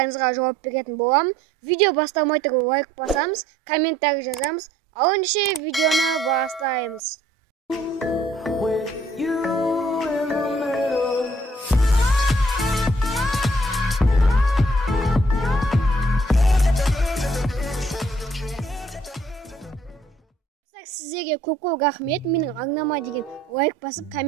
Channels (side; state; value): both; normal; correlation 0.62